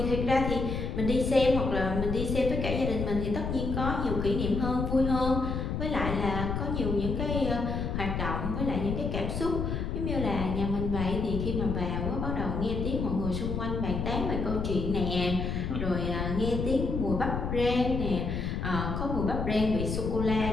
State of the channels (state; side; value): noise; left; rumble, 2 dB below the sound